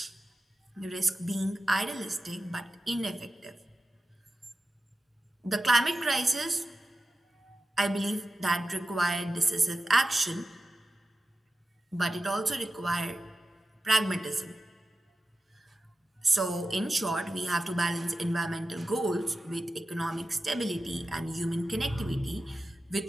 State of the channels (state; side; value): normal; both; correlation 0.93